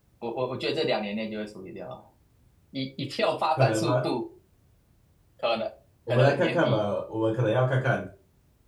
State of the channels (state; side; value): identical; both; correlation 1.00